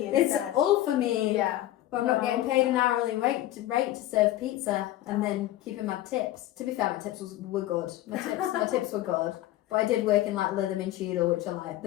It's instead. all for me. Yeah. But I'm not getting paid an hourly rate to serve pizza and then keeping my tips. To be fair, my tips were good. My tips were good. But I did work in like Lytham Cheadle, which are like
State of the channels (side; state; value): right; quieter; 14.6 dB